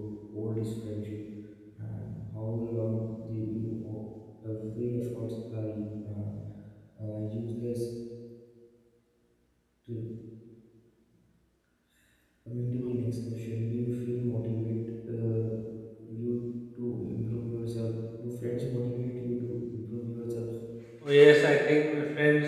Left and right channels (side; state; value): both; identical; correlation 1.00